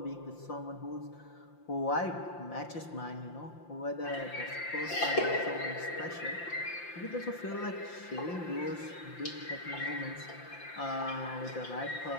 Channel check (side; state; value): right; late; 5.8 ms